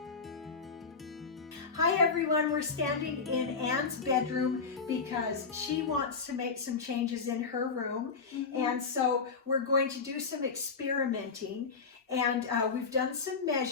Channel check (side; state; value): right; quieter; 5.0 dB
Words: Hi everyone, we're standing in Anne's bedroom because she wants to make some changes in her room. And so we're going to do some experimenting, and we've done some